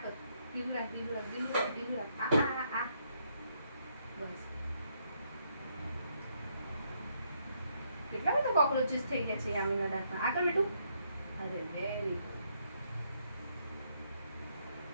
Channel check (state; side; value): inverted; both; correlation -0.74